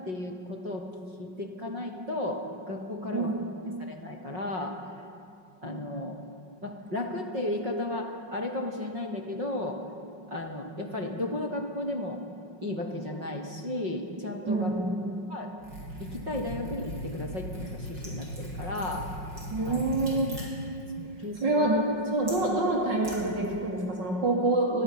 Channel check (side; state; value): left; late; 5.5 ms